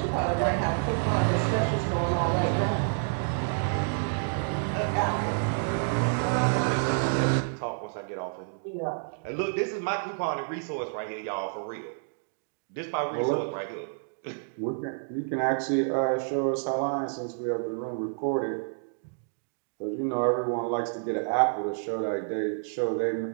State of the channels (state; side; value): silent; left; digital silence